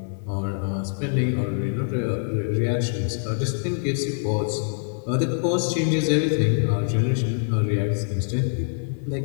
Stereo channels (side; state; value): right; silent; digital silence